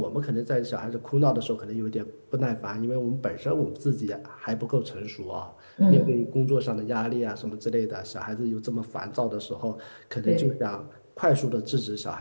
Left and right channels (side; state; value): both; inverted; correlation -1.00